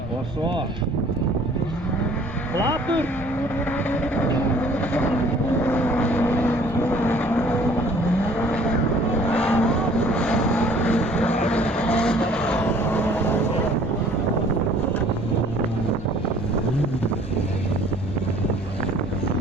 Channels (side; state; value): both; normal; correlation 0.55